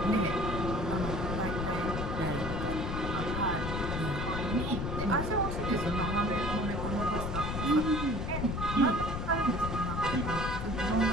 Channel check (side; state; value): left; noise; rumble, 3 dB below the sound